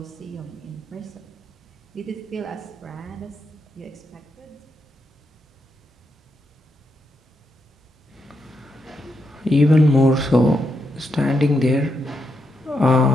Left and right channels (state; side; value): normal; both; correlation 0.82